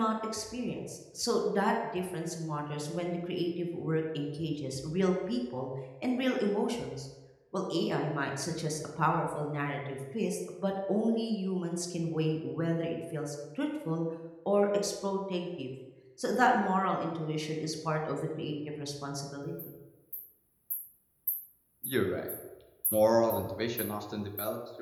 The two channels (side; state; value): both; identical; correlation 1.00